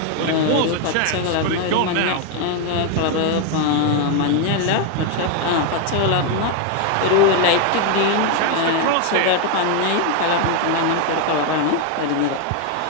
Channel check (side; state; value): both; different; correlation 0.01